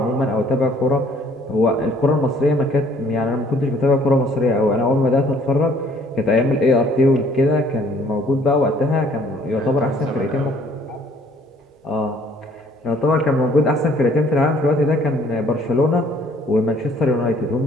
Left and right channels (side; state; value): both; normal; correlation 0.60